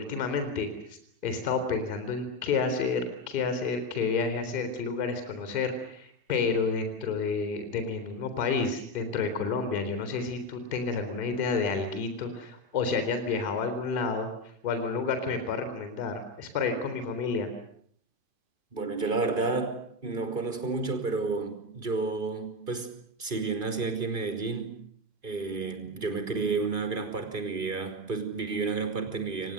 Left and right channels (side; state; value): left; late; 2.5 ms